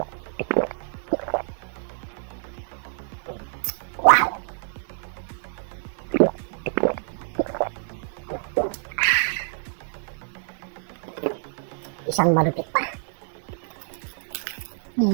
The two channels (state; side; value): silent; left; 60 dB below the other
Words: Wow! Isang malupit pa.